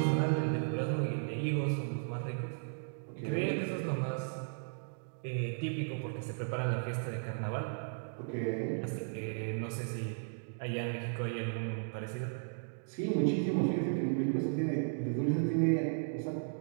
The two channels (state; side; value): silent; left; digital silence